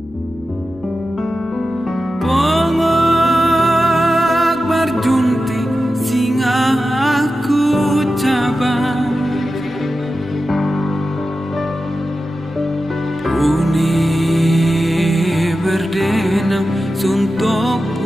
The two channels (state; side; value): noise; left; hum, 29 dB below the sound